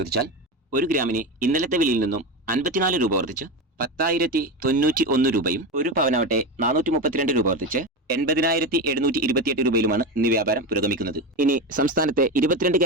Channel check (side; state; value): both; normal; correlation 0.19